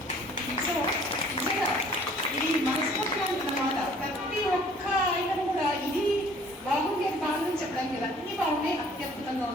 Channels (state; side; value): normal; both; correlation 0.54